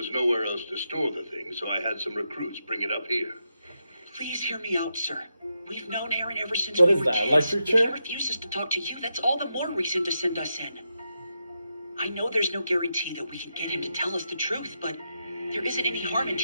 nowhere else to store the thing, so I had some recruits bring it up here. Please hear me out, sir. We've known Aaron ever since What we is were that, kids. electric If chair? he refuses to talk to you, that's all the more reason to send us in. I know there's no guarantee that we can get him to tell us the truth, but there isn't any harm in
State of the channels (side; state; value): both; inverted; correlation -0.85